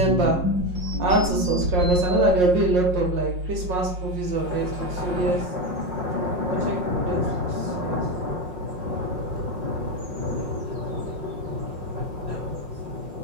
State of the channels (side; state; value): left; late; 5.6 ms